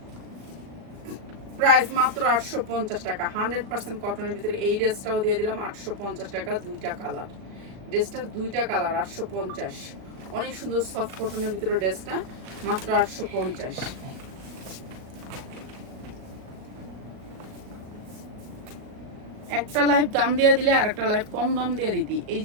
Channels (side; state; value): left; late; 38 ms